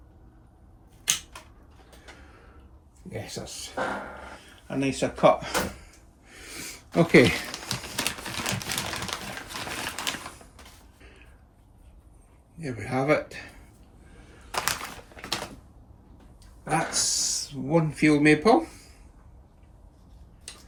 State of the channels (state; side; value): identical; both; correlation 1.00